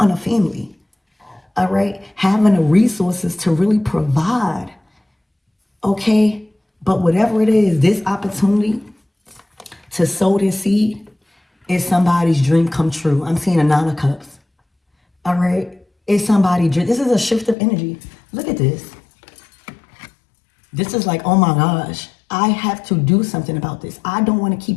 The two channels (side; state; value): right; drops out; at 17.6 s